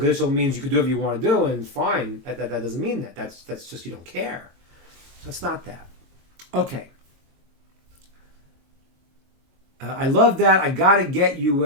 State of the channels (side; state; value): left; late; 22 ms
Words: means you can do whatever you want to do and fine. That doesn't mean that. That's just you don't care. So it's not that. Okay. I love that. I got to get you